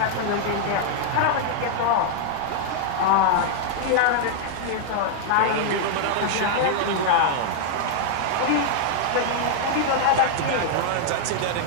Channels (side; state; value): both; different; correlation -0.01